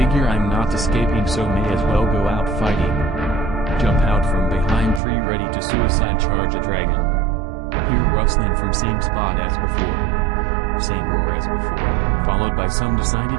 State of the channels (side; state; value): left; drops out; at 5.0 s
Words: I'm not escaping, so may as well go out fighting. Jump out from behind tree ready to suicide charge a dragon. Hear rustling from same spot as before. Same roar as before, followed by some